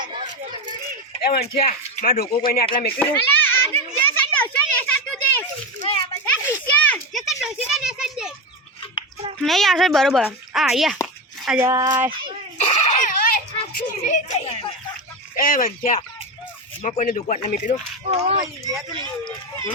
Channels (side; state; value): both; normal; correlation 0.17